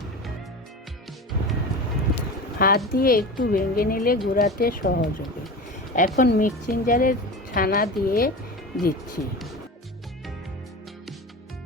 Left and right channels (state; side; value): normal; both; correlation 0.30